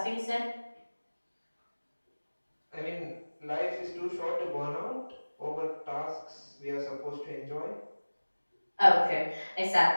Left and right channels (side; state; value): both; inverted; correlation -1.00